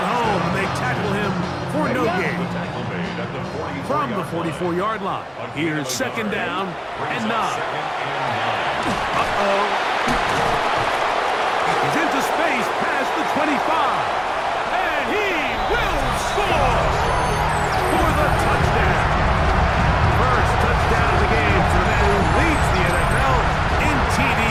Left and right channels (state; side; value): identical; both; correlation 1.00